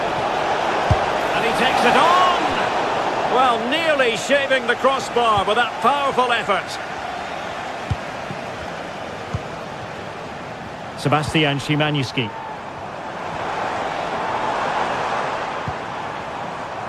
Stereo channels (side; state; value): both; identical; correlation 1.00